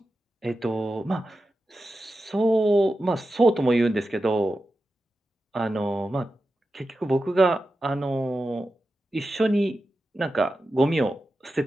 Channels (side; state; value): both; normal; correlation 0.91